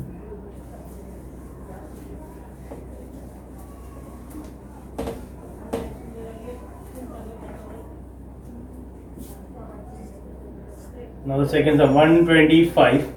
Now the second sum, 125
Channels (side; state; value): both; identical; correlation 1.00